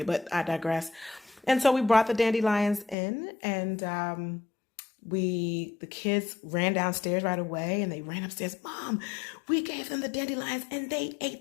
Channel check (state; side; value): drops out; right; at 3.0 s